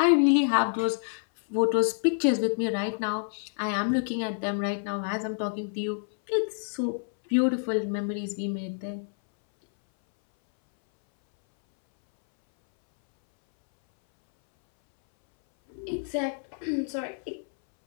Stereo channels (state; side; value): silent; right; 59 dB below the other